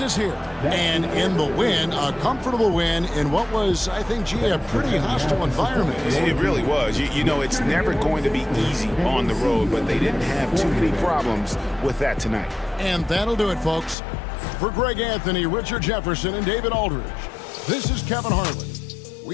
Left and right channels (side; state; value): right; drops out; at 14.0 s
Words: here. And in the win, a comfortable win in what was, I think, gee, a pretty hostile environment. It really was. You know, it's never going to be easy on the road, but they didn't have too many problems with that tonight. And that'll do it, folks. For Greg Anthony, Richard Jefferson, and David Aldridge, this is Kevin Harlan.